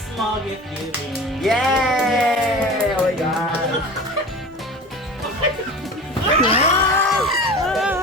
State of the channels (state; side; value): normal; both; correlation 0.36